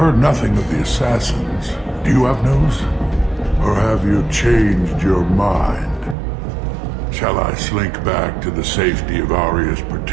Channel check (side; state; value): left; drops out; at 6.2 s